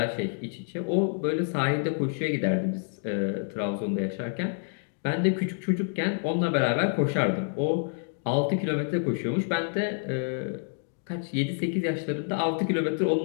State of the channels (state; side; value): silent; right; digital silence